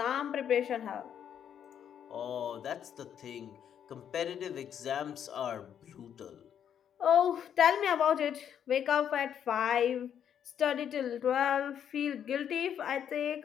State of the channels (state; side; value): quieter; right; 9.0 dB